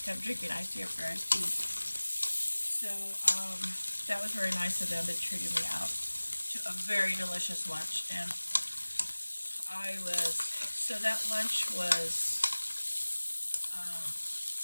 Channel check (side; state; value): both; inverted; correlation -1.00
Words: Kept drinking iced tea after iced tea. So that was very nice of them. They treated me out to a very delicious lunch, and so that lunch was